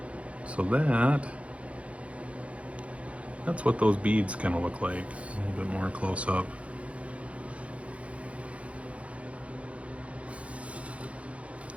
So that's what those beads kind of look like, a little bit more close up.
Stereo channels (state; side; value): late; left; 0.063 ms